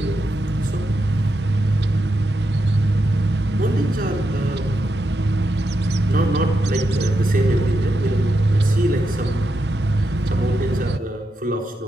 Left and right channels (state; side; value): normal; both; correlation 0.85